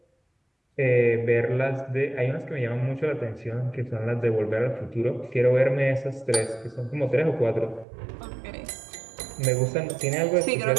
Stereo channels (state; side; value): drops out; left; at 7.9 s